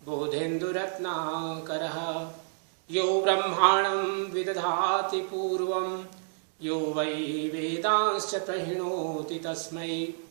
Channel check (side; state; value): left; silent; digital silence